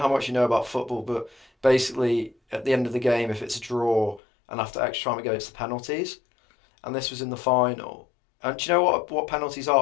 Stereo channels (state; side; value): drops out; right; at 4.2 s